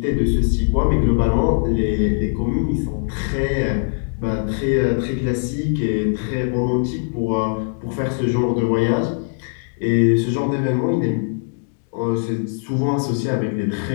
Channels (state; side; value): silent; right; 65 dB below the other